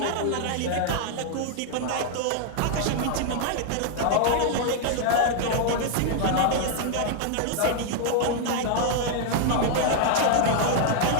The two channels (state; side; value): different; both; correlation 0.00